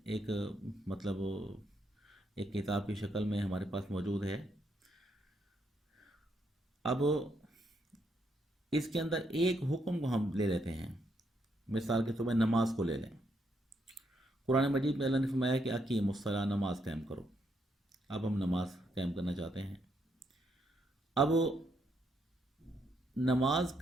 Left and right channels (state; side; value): normal; both; correlation 0.76